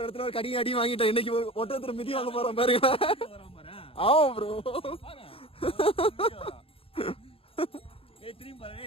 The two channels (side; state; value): right; late; 0.27 ms